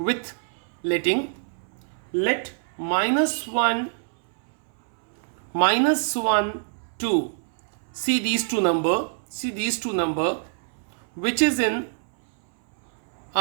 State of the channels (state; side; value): silent; left; 61 dB below the other